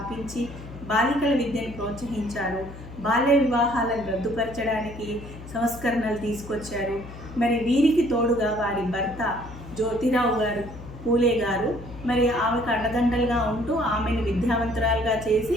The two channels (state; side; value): noise; left; hum, 14 dB below the sound